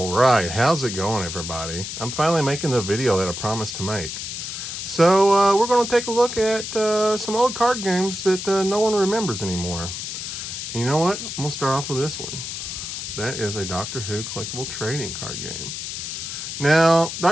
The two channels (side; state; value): left; noise; hiss, 6 dB below the sound